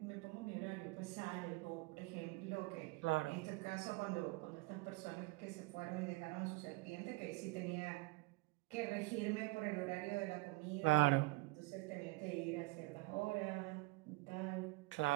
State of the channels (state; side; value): quieter; left; 22.7 dB